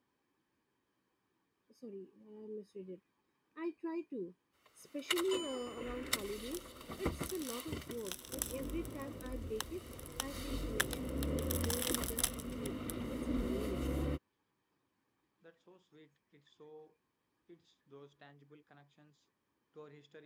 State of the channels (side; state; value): both; identical; correlation 1.00